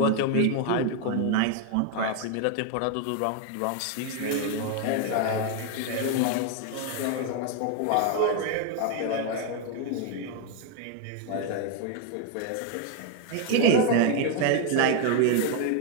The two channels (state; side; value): different; both; correlation 0.01